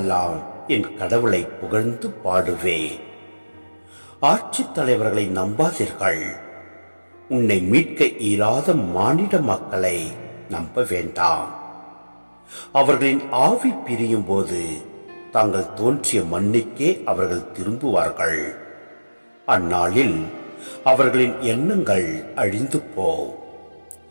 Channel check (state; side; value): inverted; both; correlation -1.00